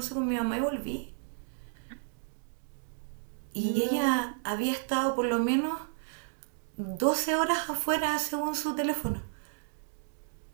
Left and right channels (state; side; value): silent; left; 56 dB below the other